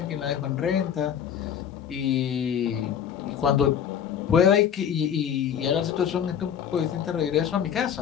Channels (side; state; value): right; quieter; 8.7 dB